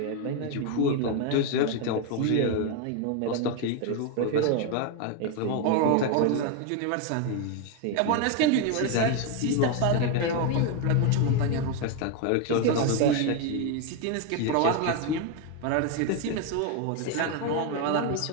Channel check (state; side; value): different; both; correlation 0.01